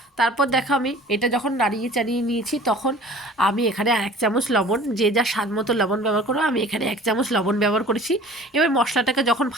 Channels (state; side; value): normal; both; correlation 0.45